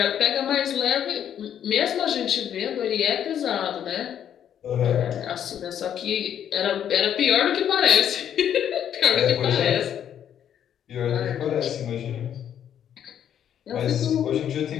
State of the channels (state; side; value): quieter; right; 9.6 dB